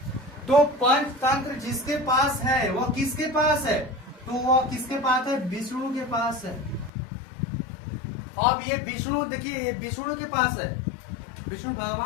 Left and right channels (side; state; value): right; drops out; at 6.9 s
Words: तो पंचतंत्र जिसके पास है वह किसके पास है? तो वह किसके पास है? विष्णु के पास है। अब ये विष्णु देखिए, ये विष्णु के पास है, विष्णु